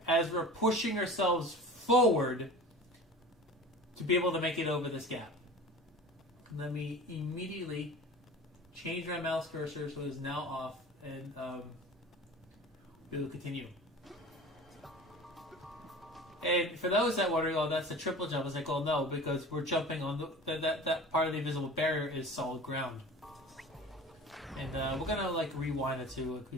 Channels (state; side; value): normal; both; correlation 0.38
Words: as we're pushing ourselves forward to be able to make it over this gap. Let me immediately change my mouse cursor so it's now off, and we will continue. And for those that wondering, oh, that's a triple jump, I was like, oh no, because we're jumping on that part of the invisible barrier is solid ground. And we're gonna like rewind it so we